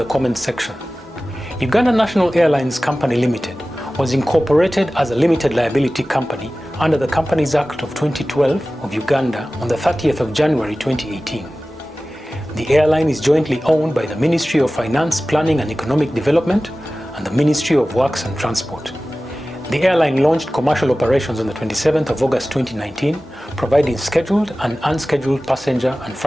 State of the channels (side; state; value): both; normal; correlation 0.96